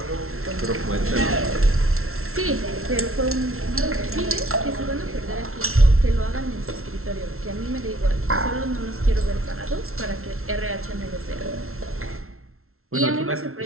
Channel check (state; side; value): late; left; 0.62 ms